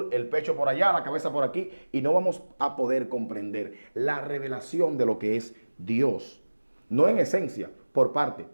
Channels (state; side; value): inverted; both; correlation -1.00